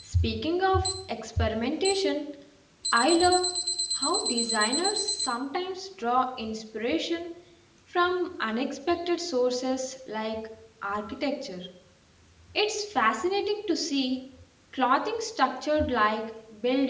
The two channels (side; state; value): both; identical; correlation 1.00